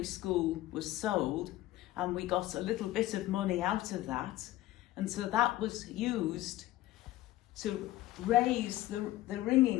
school was sold and we got a little bit of money out of that. And so that was used to raise the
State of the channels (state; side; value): quieter; right; 15.9 dB